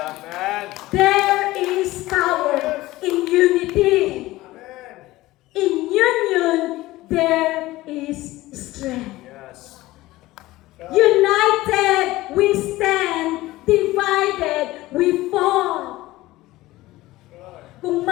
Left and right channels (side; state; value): right; quieter; 17.9 dB